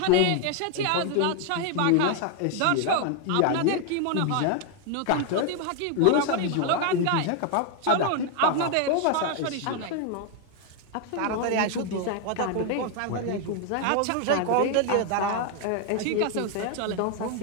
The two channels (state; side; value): different; both; correlation 0.01